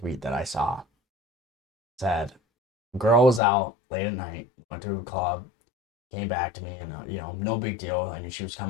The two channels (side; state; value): right; drops out; at 3.4 s